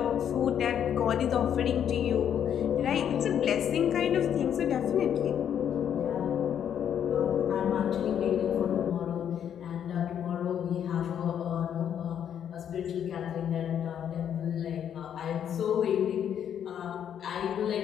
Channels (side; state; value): right; quieter; 9.1 dB